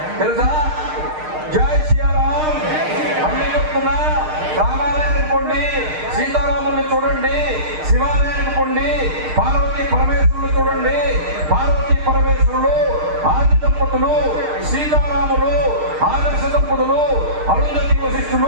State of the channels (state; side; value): late; left; 6.5 ms